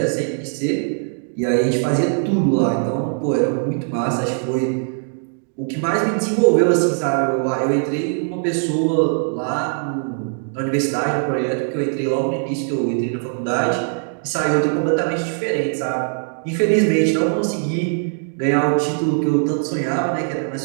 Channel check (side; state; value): left; silent; 60 dB below the other